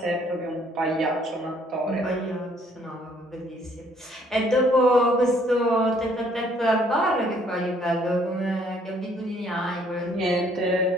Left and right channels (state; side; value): normal; both; correlation 0.63